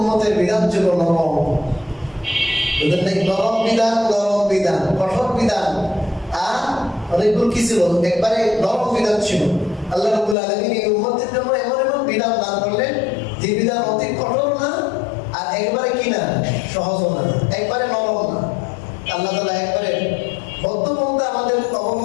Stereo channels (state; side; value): drops out; right; at 10.4 s